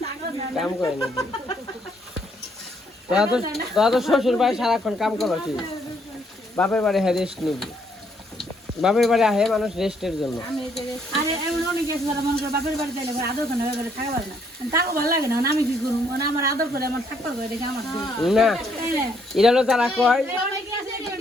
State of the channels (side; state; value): both; normal; correlation 0.70